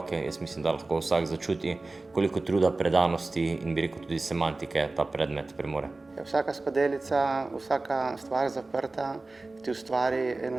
jaz mislim, da lahko vsak začuti, koliko truda, predanosti in bi rekel tudi semantike ta predmet premore. Vsaka skodelica, vsaka stvar zaprta ti ustvari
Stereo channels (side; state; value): left; quieter; 3.2 dB